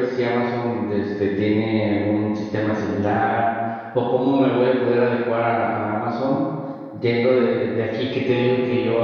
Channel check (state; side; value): identical; both; correlation 1.00